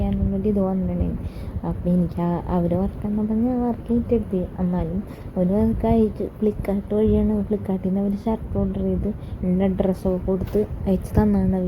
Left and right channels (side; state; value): both; identical; correlation 1.00